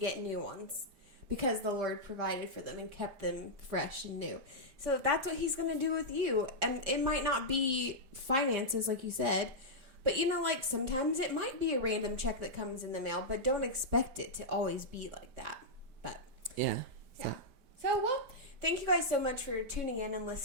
new ones because the Lord provided for them and kept them fresh and new. So that's what He's going to do with you, and it might not be finances like you said. But, like, sometimes it might be a random check that comes in the mail, but don't expect it to always be like that. But, yeah. So, well, thank you guys so much for tuning in and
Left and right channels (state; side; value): late; left; 5.0 ms